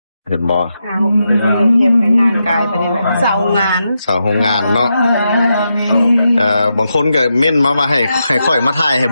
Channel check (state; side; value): inverted; both; correlation -0.86